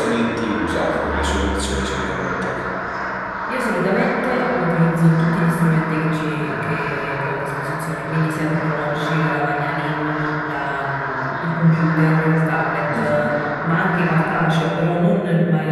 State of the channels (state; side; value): identical; both; correlation 1.00